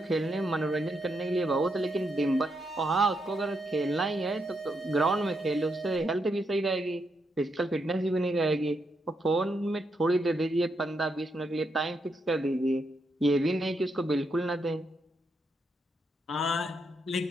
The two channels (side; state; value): both; normal; correlation 0.81